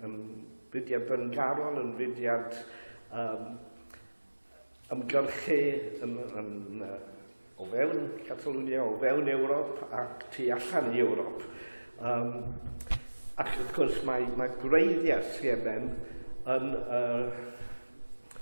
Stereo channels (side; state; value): both; inverted; correlation -1.00